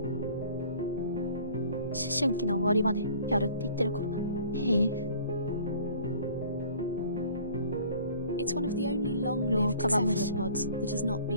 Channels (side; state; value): both; inverted; correlation -0.50